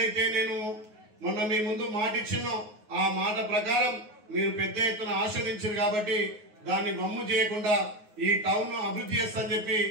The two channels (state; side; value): late; left; 9.5 ms